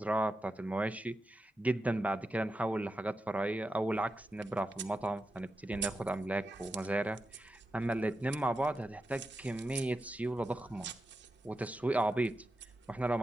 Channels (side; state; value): both; normal; correlation 0.89